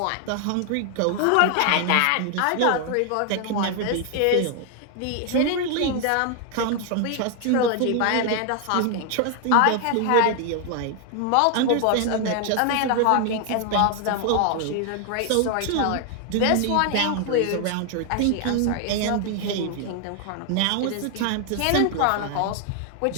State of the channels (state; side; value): different; both; correlation 0.00